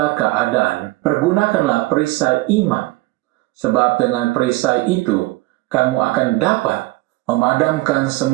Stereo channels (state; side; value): quieter; left; 20.3 dB